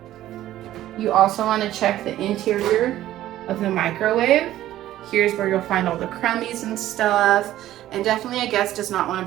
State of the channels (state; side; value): quieter; left; 13.7 dB